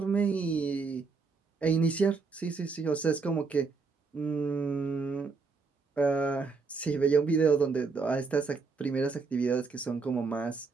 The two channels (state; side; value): quieter; left; 4.6 dB